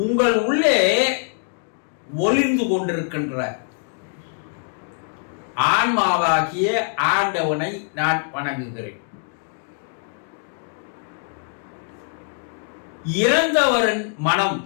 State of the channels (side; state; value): right; silent; 63 dB below the other